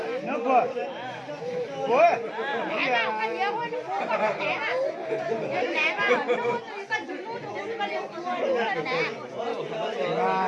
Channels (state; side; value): identical; both; correlation 1.00